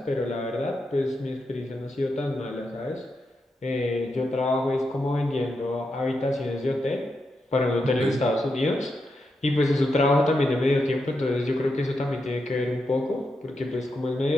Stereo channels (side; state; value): both; normal; correlation 0.85